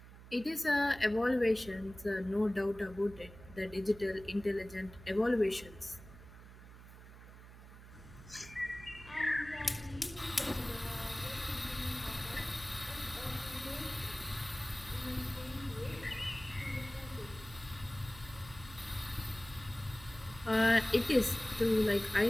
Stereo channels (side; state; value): right; noise; hum, 17 dB below the sound